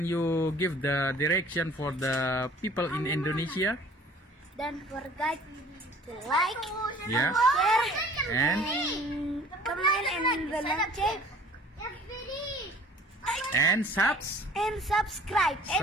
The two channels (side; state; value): both; normal; correlation 0.50